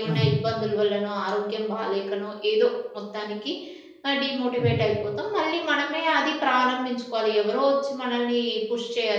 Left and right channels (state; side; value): identical; both; correlation 1.00